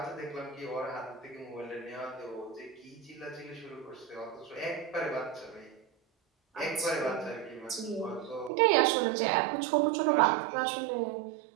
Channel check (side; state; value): left; drops out; at 8.5 s